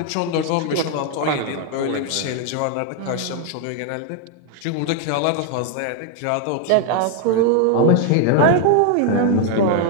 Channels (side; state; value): both; different; correlation 0.00